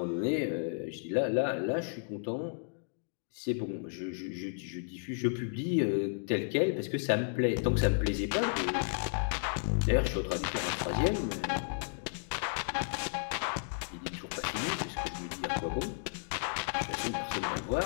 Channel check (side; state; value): right; silent; digital silence